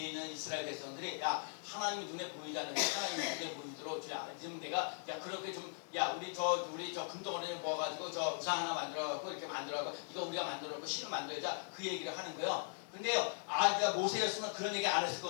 있는 이스라엘 백성들이, 야, 하나님이 눈에 보이지 않는데 하나님이 눈에 보이도록, 야, 지금 내가, 야, 그렇게 좀, 야, 우리 저 금덩어리를 모아가지고 저 우상 하나 만들어갖고 이렇게 만들어갖고 이거 우리가 만들어놓고 신을 만들자, 그 얘기를 하는 거예요. 근데요, 그러니까 모세였으면 그런 얘기 안 했을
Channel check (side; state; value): right; silent; digital silence